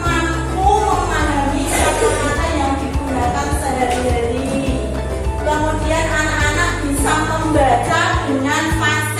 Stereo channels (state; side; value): identical; both; correlation 1.00